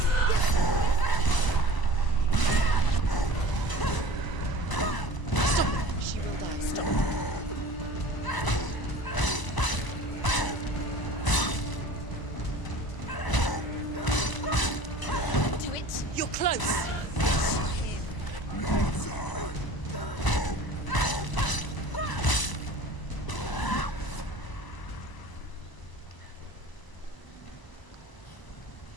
Stop. She will die. Stop. Do it. You're close.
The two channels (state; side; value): late; right; 1.0 ms